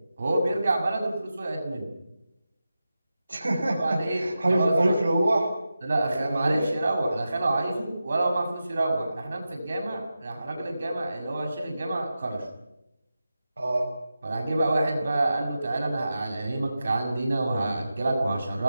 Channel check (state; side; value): inverted; both; correlation -0.91